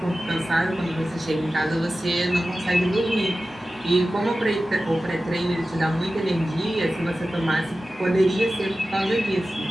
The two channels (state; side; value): normal; both; correlation 0.95